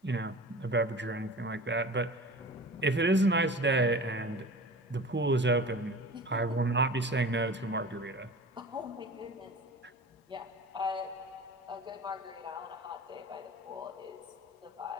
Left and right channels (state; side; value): normal; both; correlation 0.38